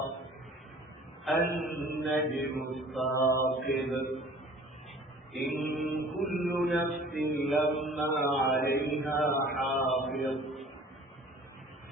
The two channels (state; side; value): normal; both; correlation 0.48